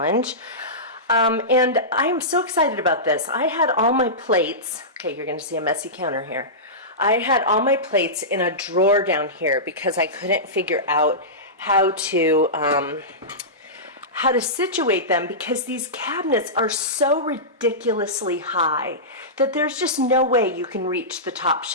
And I'm so excited about this. I had all my plates, okay, you're gonna see a messy counter here. I had all my plates in a drawer down here because I couldn't figure out how to situate them because these cabinets are so ridiculously high that there's just no way you can reach the top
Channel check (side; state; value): both; normal; correlation -0.17